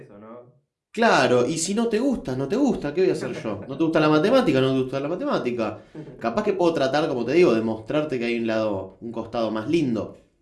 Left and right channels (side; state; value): both; identical; correlation 1.00